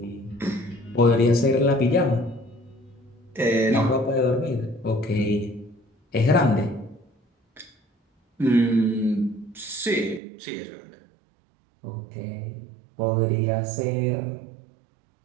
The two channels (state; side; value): drops out; left; at 10.2 s